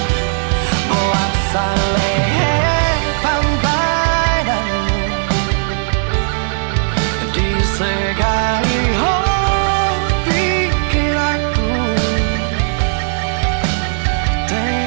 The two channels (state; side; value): silent; left; digital silence